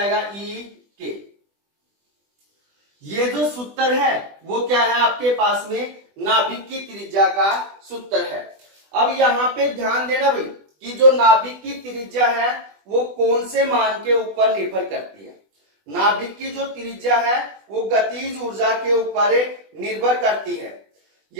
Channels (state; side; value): late; left; 20 ms